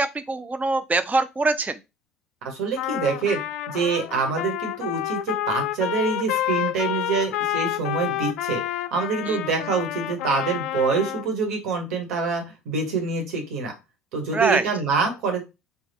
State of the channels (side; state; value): both; normal; correlation 0.38